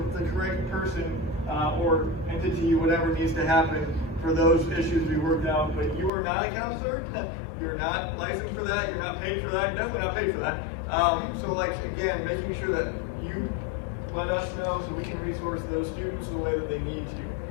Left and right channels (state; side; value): drops out; right; at 6.1 s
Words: correct person or entity, whatever needs to happen for those issues we worked out. But you are not a counselor. You're not licensed for that. You're not paid for that. You're definitely not paid for that. So like, again, making sure that you let us know so we can resource those students the way that they need to.